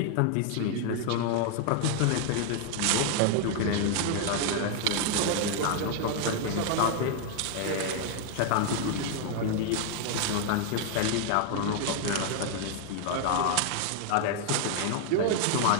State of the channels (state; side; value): different; both; correlation 0.00